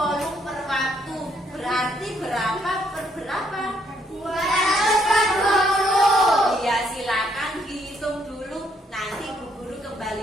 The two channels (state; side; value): normal; both; correlation 0.70